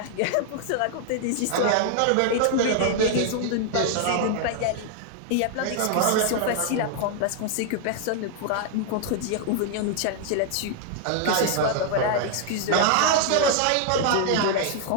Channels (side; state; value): both; different; correlation 0.00